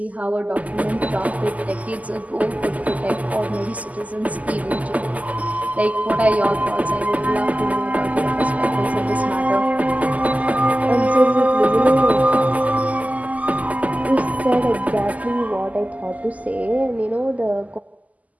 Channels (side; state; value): left; late; 0.075 ms